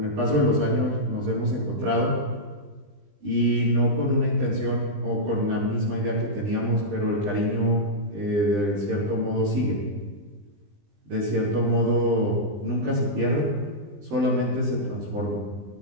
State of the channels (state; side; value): late; left; 20 ms